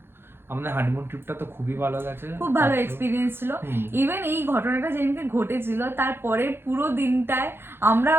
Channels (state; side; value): late; left; 0.11 ms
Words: আমাদের হানিমুন ট্রিপটা তো খুবই ভালো গেছে, খুব ভালো এক্সপিরিয়েন্স ছিল। ইভেন এই ঘটনাটা যেদিনকে ঘটেছিল তারপরে পুরো দিনটায় আমরা